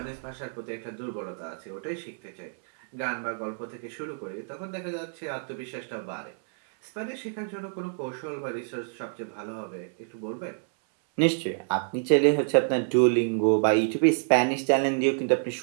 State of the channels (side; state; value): left; silent; 59 dB below the other